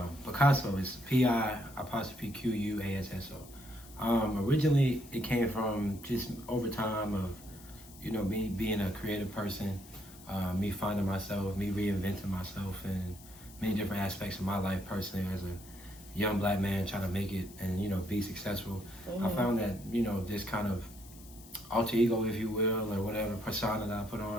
Picasso is P-I-Q-U-A-S-S-O. Originally, it came from just over time of, me being a creative person, me finding myself, me reinventing myself in many different aspects of my life personally as a young black man trying to make it and, be successful. Mm-hmm. I found that, this kind of alter ego, if you will, or whatever persona that I put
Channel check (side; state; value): left; noise; hiss, 20 dB below the sound